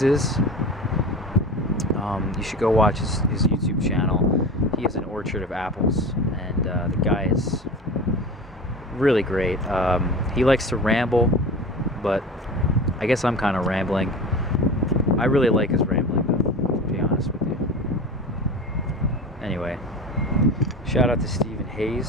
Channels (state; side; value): normal; both; correlation 0.32